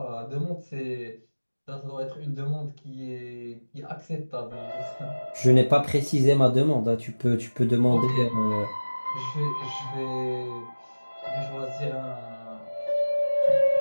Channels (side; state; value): both; inverted; correlation -1.00